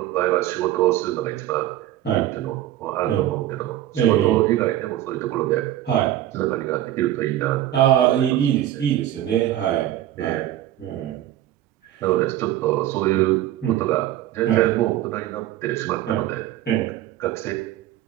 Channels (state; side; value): quieter; left; 13.1 dB